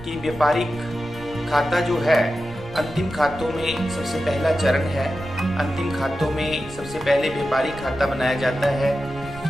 कि व्यापारिक खाता जो है अंतिम खातों में सबसे पहला चरण है. अंतिम खातों में सबसे पहले व्यापारिक खाता बनाया जाता है.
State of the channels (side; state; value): right; noise; rumble, 17 dB below the sound